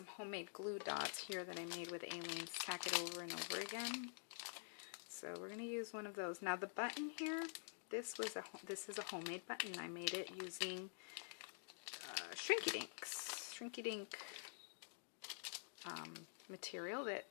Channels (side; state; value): right; silent; digital silence